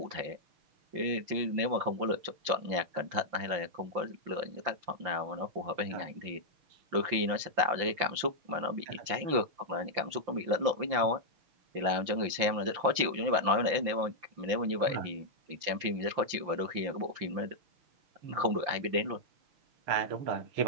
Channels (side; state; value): left; late; 5.8 ms